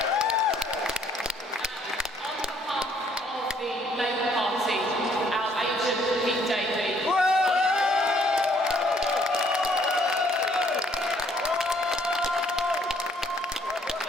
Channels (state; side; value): normal; both; correlation 0.64